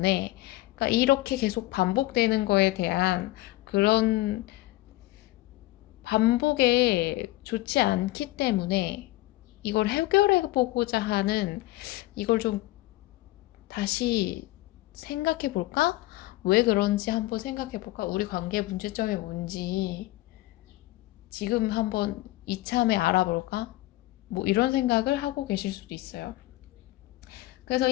그러니까 이렇게 계속 반복되는 거에 대한 그런 반복에 좋지 않기 때문에 이걸 해결해 보고자 하는, 이걸 좀 다시 생각해 볼까? 왜 그런지 한번 생각해 볼까? 우리 관계 문제점이 뭔지 지금 한번 이참에 알아볼까? 뭐 이런 생각을 하고 계실 수도 있어요. 그래서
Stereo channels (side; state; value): right; quieter; 18.1 dB